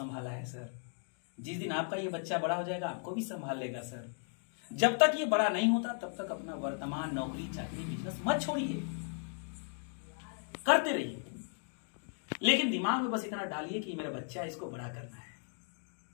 है सर। जिस दिन आपका ये बच्चा बड़ा हो जाएगा आपको भी संभाल लेगा सर। जब तक ये बड़ा नहीं होता तब तक अपना वर्तमान नौकरी चाकरी बिजनेस मत छोड़िए, करते रहिए, लेकिन दिमाग में बस इतना डालिए कि मेरा बच्चा, इसको बड़ा करना है।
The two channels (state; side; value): silent; right; 54 dB below the other